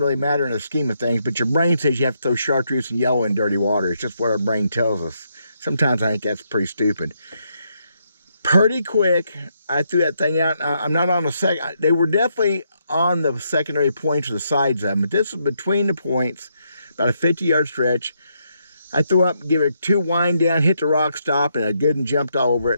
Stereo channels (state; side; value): inverted; both; correlation -0.78